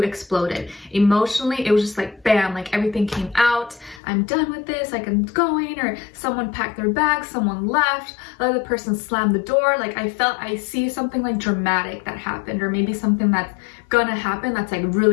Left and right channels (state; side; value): drops out; right; at 4.0 s